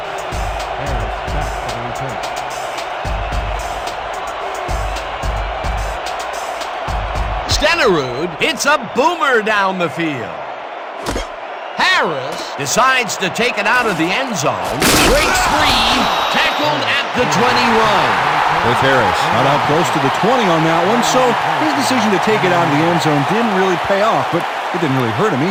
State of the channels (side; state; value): both; identical; correlation 1.00